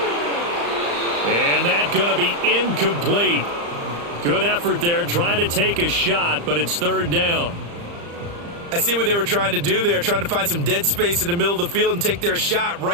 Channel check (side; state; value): left; late; 35 ms